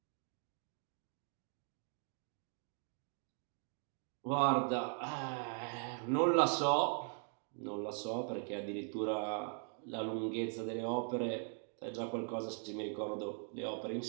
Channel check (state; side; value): silent; left; 51 dB below the other